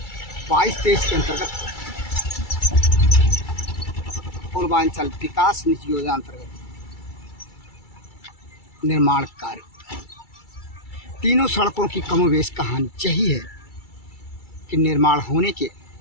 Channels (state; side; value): late; right; 2.3 ms